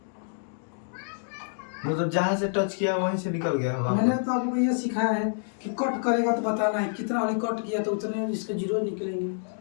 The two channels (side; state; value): right; silent; digital silence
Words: मतलब जहाँ से टच किया वहीं से निकल गया है मैंने वापस। तो आपको ये सिखाया है कि कट करेगा तो बताना है कितना वाली कट किया तो उतने इसके जीरो निकलेंगे।